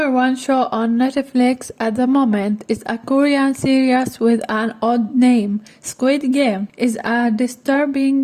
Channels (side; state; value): both; identical; correlation 1.00